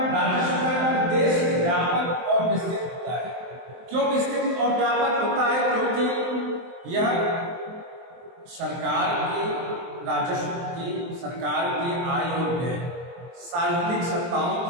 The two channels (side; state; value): left; late; 23 ms